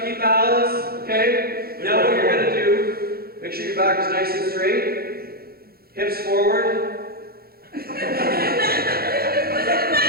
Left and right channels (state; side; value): late; left; 0.44 ms